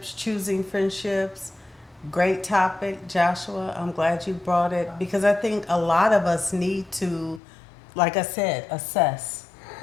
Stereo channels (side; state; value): right; drops out; at 7.4 s